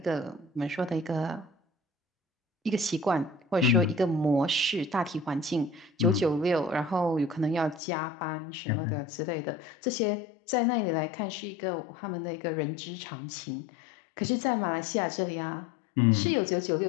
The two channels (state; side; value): drops out; right; at 7.8 s